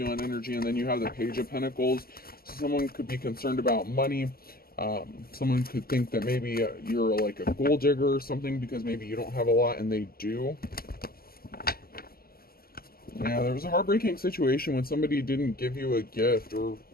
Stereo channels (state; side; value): late; right; 0.44 ms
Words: energy, and then you have the Page of Pentacles. So someone could be concerned about money. Someone could think that maybe you're like a gold digger or something, because maybe you don't have a lot and they do. Yeah, there was a heartbreaking situation when somebody didn't give you a gift, or